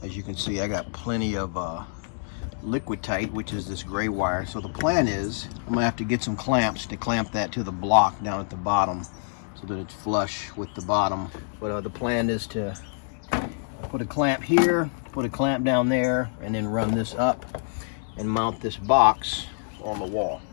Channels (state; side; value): silent; right; digital silence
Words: As you can see, I got plenty of liquid tight, which is this gray wire. So the plan is I'm gonna have to get some clamps to clamp that to the block down at the bottom so that it's flush with the bottom. But the plan is to put a clamp here, put a clamp down there, and then run this up and mount this box on the wall.